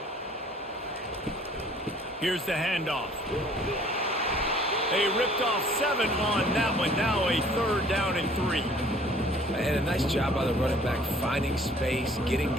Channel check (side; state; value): both; normal; correlation 0.55